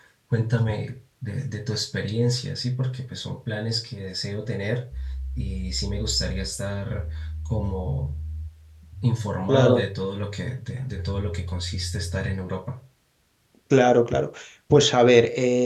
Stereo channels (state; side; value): identical; both; correlation 1.00